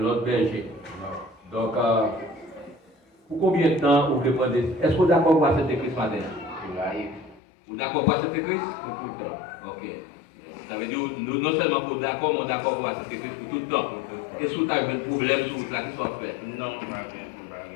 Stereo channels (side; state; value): right; drops out; at 7.4 s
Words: berger. Donc, pour combien de temps vous voulez prendre? Est-ce que vous êtes d'accord pour accepter Christ matin? Vous êtes d'accord pour accepter Christ? Pour tout le temps. Ok. Ça veut dire, nous, non seulement pour d'accord, mais d'accord pour accepter Christ pour tout le temps. Est-ce que vous avez un problème sur la qui soit fait? Non,